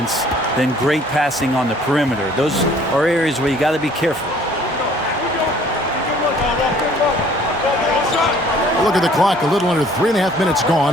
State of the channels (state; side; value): normal; both; correlation 0.56